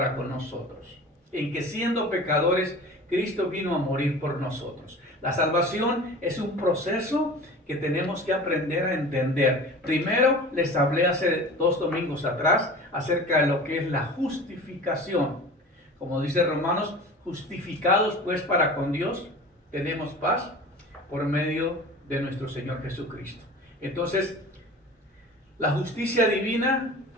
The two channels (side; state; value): both; normal; correlation 0.38